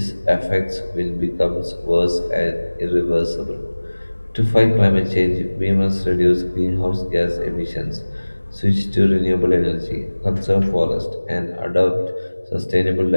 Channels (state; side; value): inverted; both; correlation -1.00